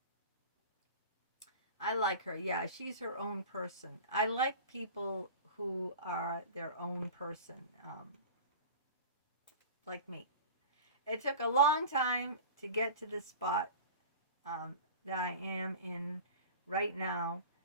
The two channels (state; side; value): inverted; both; correlation -0.35